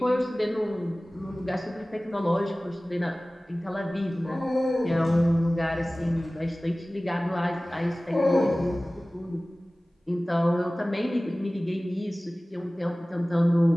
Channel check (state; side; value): normal; both; correlation 0.98